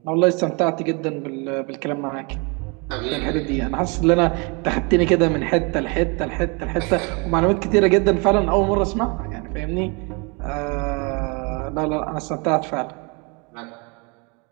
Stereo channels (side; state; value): left; quieter; 31.5 dB